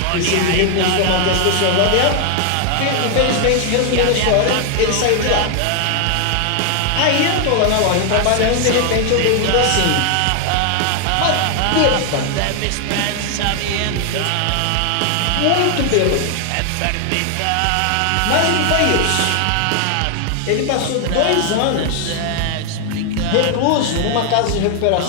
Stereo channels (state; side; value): different; both; correlation 0.00